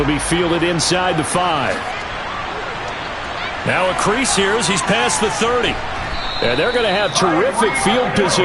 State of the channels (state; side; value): identical; both; correlation 1.00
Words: be fielded inside the 5. Now a crease here as he's past the 30. And they're going to have terrific field